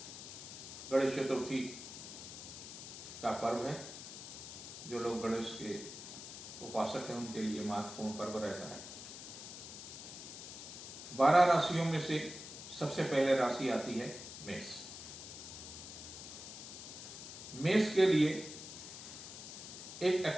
गणेश चतुर्थी का पर्व है। जो लोग गणेश के उपासक हैं उनके लिए महत्वपूर्ण पर्व रहता है। 12 राशियों में से सबसे पहले राशि आती है मेष। मेष के लिए एक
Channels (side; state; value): left; noise; hiss, 11 dB below the sound